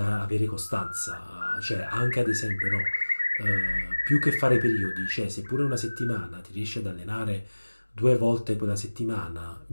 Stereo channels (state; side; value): inverted; both; correlation -1.00